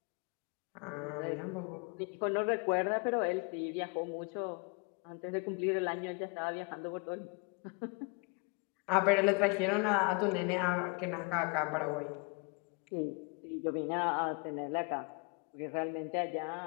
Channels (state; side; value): quieter; right; 30.9 dB